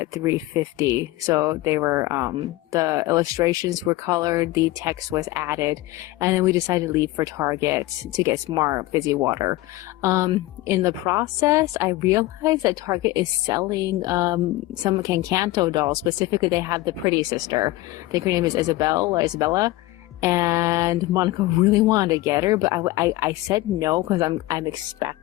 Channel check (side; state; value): right; quieter; 18.0 dB